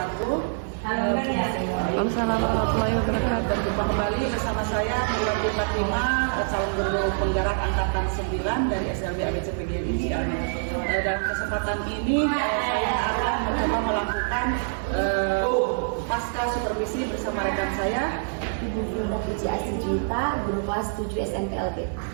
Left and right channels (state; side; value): silent; left; digital silence